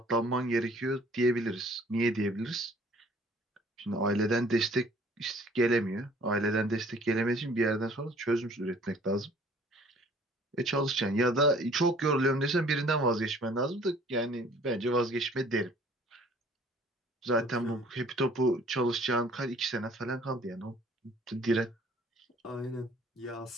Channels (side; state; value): both; normal; correlation 0.55